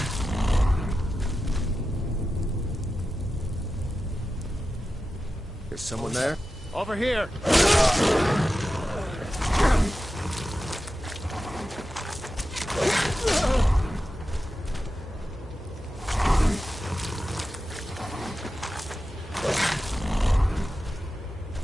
Is someone there? Over here!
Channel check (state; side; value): normal; both; correlation 0.92